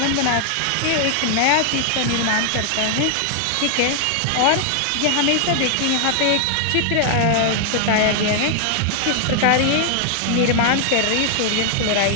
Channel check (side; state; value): both; different; correlation 0.00